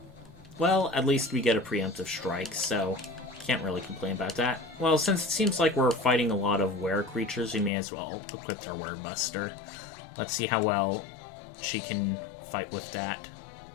Well, at least we get a preemptive strike, so can't really complain about that. Well, since it seems like we're fighting a lot of were creatures, we may as well equip our Were Buster. Let's see how well she can fight with that.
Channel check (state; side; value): drops out; right; at 7.7 s